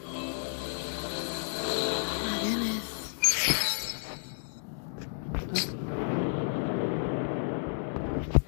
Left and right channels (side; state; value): right; silent; digital silence